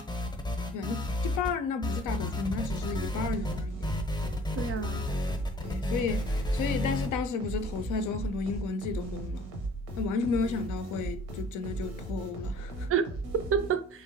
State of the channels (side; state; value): both; normal; correlation 0.51